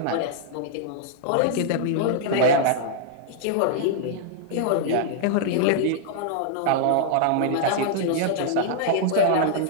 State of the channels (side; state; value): both; different; correlation -0.01